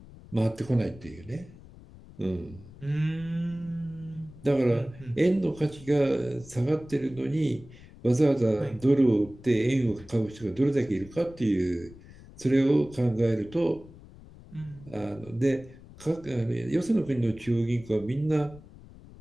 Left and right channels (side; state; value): left; noise; rumble, 20 dB below the sound